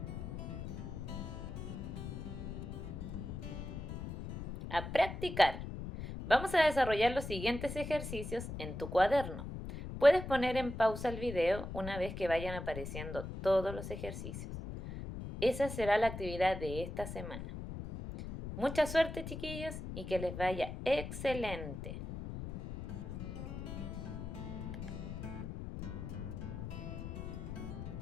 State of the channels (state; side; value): noise; left; rumble, 7 dB below the sound